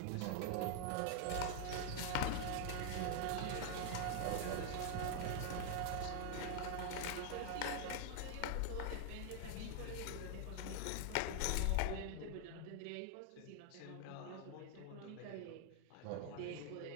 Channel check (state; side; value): different; both; correlation 0.00